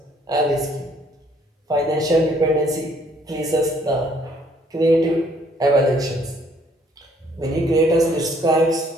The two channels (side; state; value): both; normal; correlation 0.64